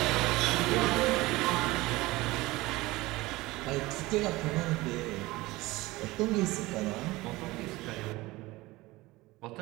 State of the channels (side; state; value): left; quieter; 20.1 dB